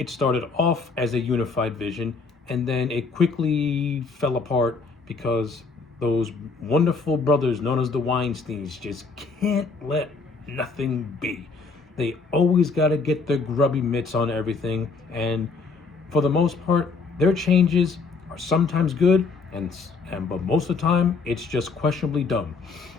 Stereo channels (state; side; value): quieter; right; 4.3 dB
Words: started off as a unified vision, and then it quickly fell apart because those wonderful brothers known as the Weinsteins just can't let nothing be. They always got to get their grubby mitts on everything, and for the most part, their changes are sometimes good, but most of the time, it's just questionably dumb.